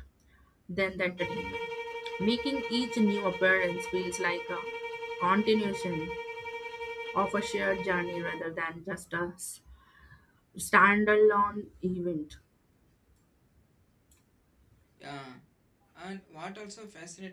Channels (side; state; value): both; identical; correlation 1.00